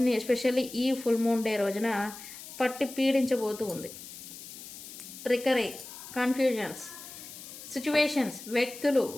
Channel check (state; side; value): noise; left; hiss, 13 dB below the sound